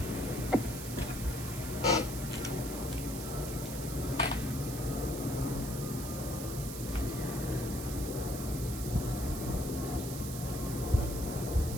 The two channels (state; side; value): noise; right; hiss, 8 dB below the sound